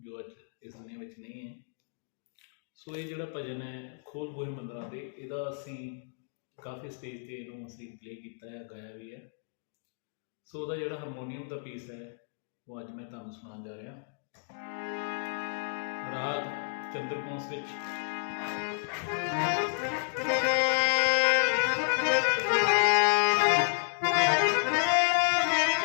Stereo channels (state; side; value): silent; right; digital silence